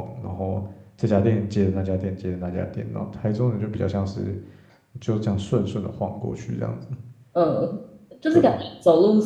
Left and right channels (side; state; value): both; identical; correlation 1.00